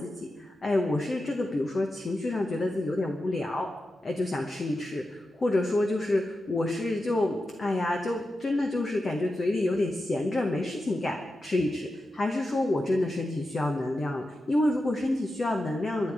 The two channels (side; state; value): both; normal; correlation 0.91